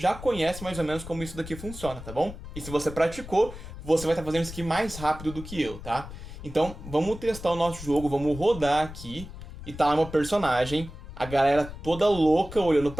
conhece mais ou menos como isso daqui funciona, tá bom? E se você praticou, você vai estar fazendo isso aqui mais rápido do que eu, tá? Então vamos testar o nosso jogo, vamos rodar aqui. E tá lá meu personagem, a galera toda louca olhando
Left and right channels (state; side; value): noise; left; rumble, 12 dB below the sound